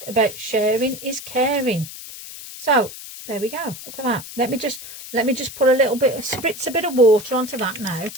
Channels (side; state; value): left; noise; hiss, 13 dB below the sound